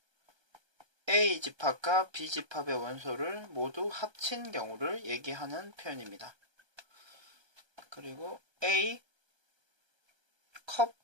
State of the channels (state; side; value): late; left; 1.3 ms